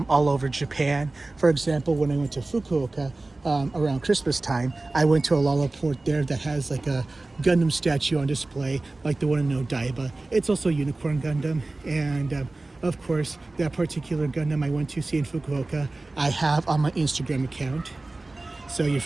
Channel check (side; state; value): left; quieter; 3.1 dB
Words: over Japan. For example, when I went to Fukuoka around Christmas time, I went to Alala Port there that has like a Gundam statue on display, like the one in Odaiba. It's also a Unicorn Gundam. And of course, that particular Gundam I went to see in Fukuoka, I have on my Instagram account. So you're